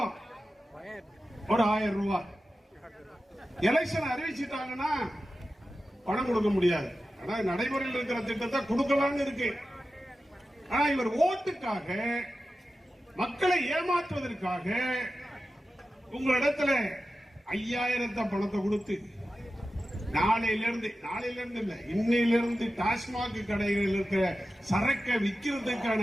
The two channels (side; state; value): both; normal; correlation 0.93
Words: ஒரு 1000 ரூபாய் எலெக்ஷன் அறிவிச்சிட்டாங்கன்னா பணம் கொடுக்க முடியாது. ஆனா நடைமுறையில் இருக்கிற திட்டத்தை கொடுக்கலாம்னு இருக்கு. ஆனா இவர் ஓட்டுக்காக, மக்களை ஏமாற்றுவதற்காக உங்களிடத்துல 5000 பணத்தை கொடுத்து நாளையிலிருந்து இல்ல, இன்னையிலிருந்து டாஸ்மாக் கடைகளில் இருக்கிற சரக்கை விற்கிறதுக்கான